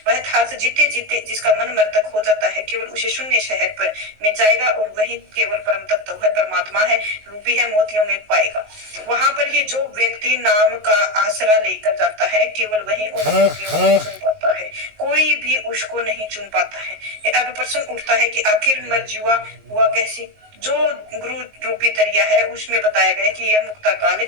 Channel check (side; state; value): left; late; 19 ms